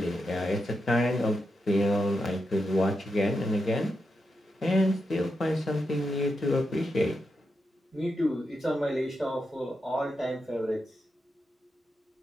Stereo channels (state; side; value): normal; both; correlation 0.86